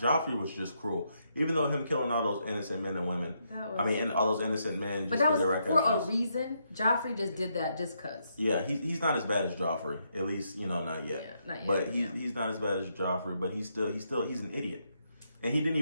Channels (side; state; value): both; inverted; correlation -0.78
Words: was just cruel. Even though him killing all those innocent men and women. And all those innocent men just because they're for a reason. Joffrey just did that just because. Yeah, he's not as bad as Joffrey. At least, not yet. Yeah, not yet. But he's not as bad as Joffrey, but he's an idiot. And he didn't